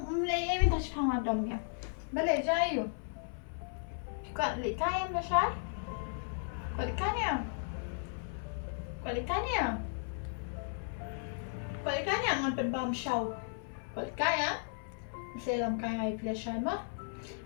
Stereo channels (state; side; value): silent; right; 54 dB below the other